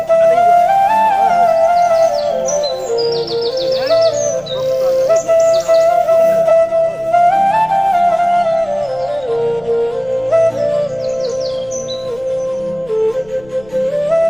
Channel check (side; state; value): left; noise; rumble, 25 dB below the sound